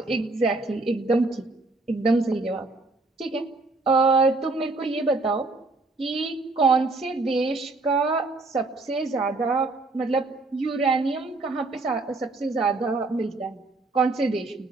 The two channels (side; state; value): left; quieter; 3.3 dB